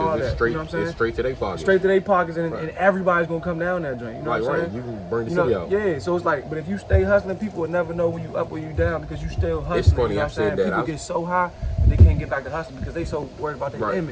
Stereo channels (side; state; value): both; identical; correlation 1.00